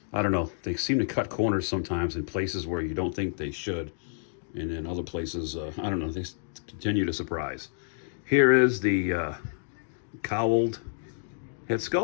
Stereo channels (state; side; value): silent; right; digital silence